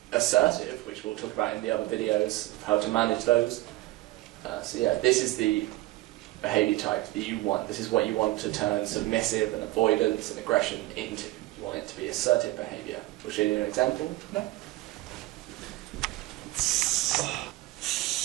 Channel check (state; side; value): quieter; left; 18.4 dB